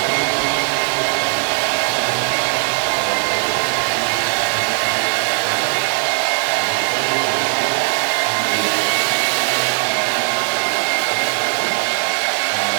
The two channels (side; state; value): left; silent; digital silence